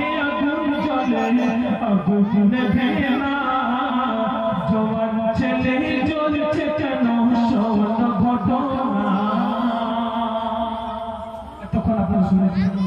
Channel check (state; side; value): identical; both; correlation 1.00